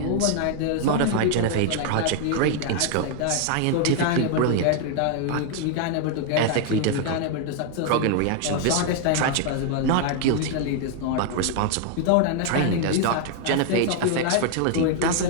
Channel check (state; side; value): different; both; correlation 0.00